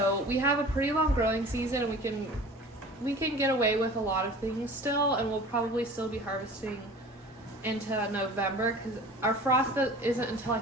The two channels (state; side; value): normal; both; correlation 0.42